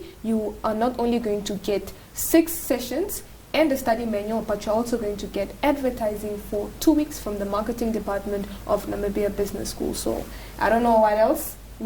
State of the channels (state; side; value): identical; both; correlation 1.00